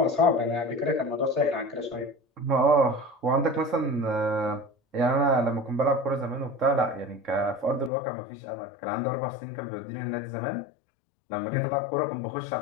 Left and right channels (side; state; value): right; drops out; at 7.9 s